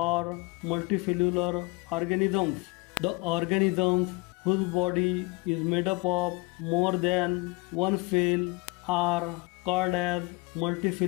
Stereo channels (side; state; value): right; quieter; 26.0 dB